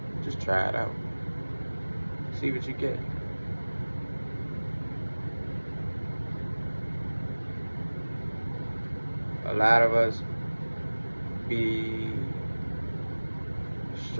Just try it out. See what you get. A lot of us be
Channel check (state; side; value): inverted; both; correlation -1.00